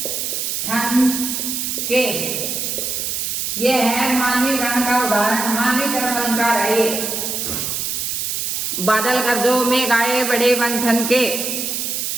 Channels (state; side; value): noise; right; hiss, 2 dB below the sound